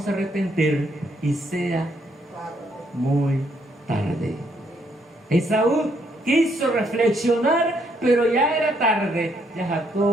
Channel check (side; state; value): both; normal; correlation 0.71